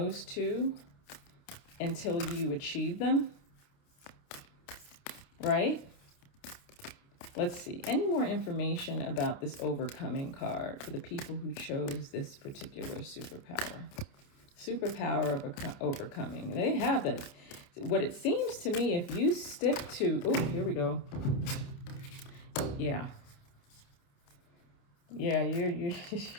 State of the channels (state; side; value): late; right; 29 ms